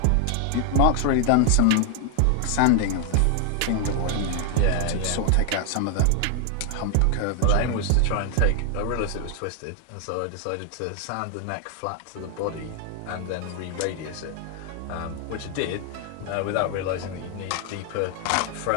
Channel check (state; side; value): different; both; correlation 0.00